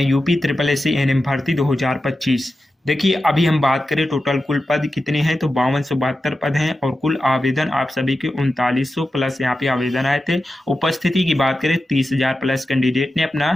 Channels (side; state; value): both; normal; correlation 0.91